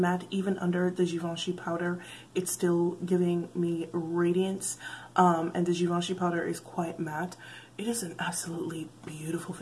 Even under the Givenchy powder, it's still giving me radiance. And the Givenchy powder is quite matte. It is an absolutely beautiful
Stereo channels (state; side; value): identical; both; correlation 1.00